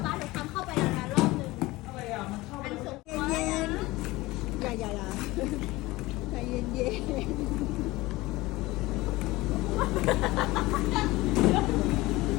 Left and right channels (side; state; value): right; quieter; 20.0 dB